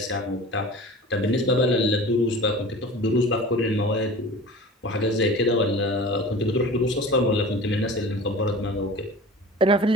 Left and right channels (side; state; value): both; normal; correlation 0.38